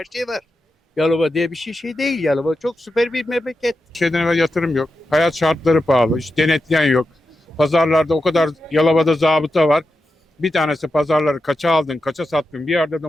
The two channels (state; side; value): normal; both; correlation 0.89